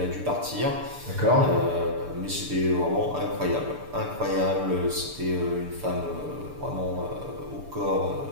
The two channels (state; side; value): late; left; 6.8 ms